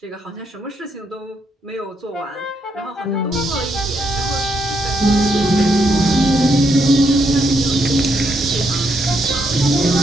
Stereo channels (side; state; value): both; normal; correlation 0.77